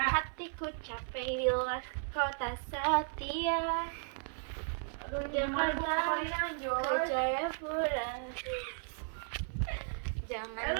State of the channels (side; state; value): left; silent; 54 dB below the other